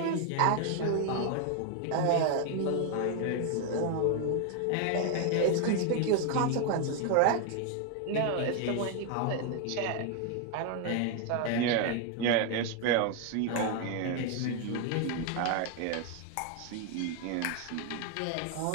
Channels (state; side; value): different; both; correlation 0.00